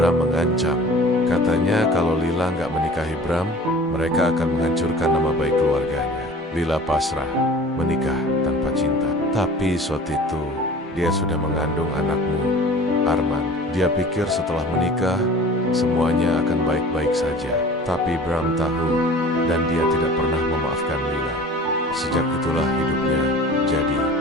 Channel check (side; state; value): both; normal; correlation 0.43